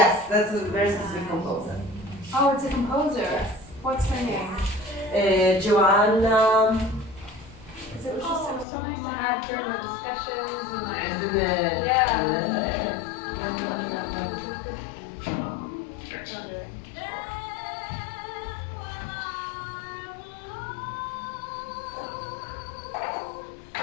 that's a very specific composer. Oh, it's a composer. What's her name? Joanna, It was so nice to have during the discussions and like. isn't it? Yeah.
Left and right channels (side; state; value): right; drops out; at 8.7 s